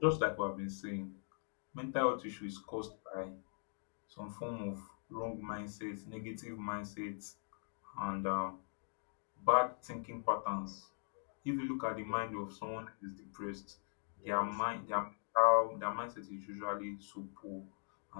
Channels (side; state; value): right; silent; digital silence